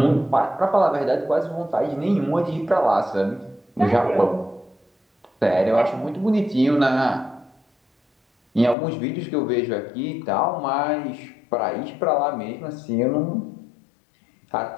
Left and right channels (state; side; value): drops out; right; at 8.8 s